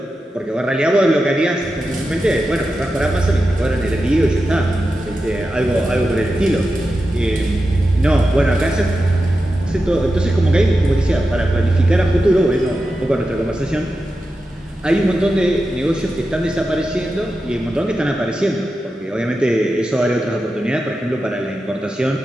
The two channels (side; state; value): both; normal; correlation 0.91